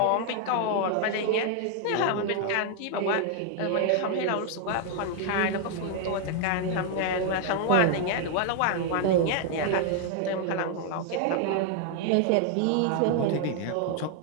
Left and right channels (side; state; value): both; different; correlation 0.00